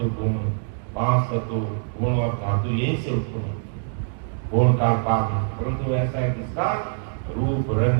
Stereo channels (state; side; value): silent; left; digital silence